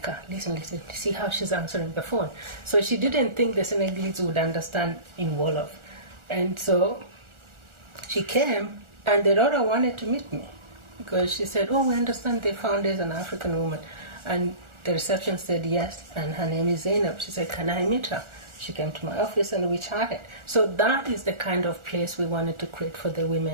her. Listen, see how she's answering the phone. So she didn't think the Senegalese would understand in Wolof. And so she came, and the daughter wanted to meet me because she said, oh, we understand the founder is an African woman. And the reception said yes, and her name is Zeinab. She said, can I meet her? She came to my office and we chatted. So that is the kind of place we wanted to create for the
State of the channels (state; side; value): late; left; 1.4 ms